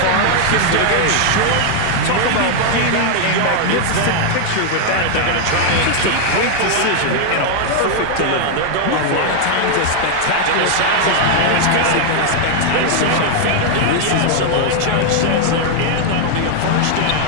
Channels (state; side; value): different; both; correlation 0.00